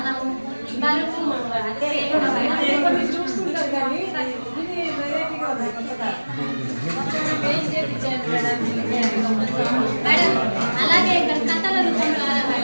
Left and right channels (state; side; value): inverted; both; correlation -1.00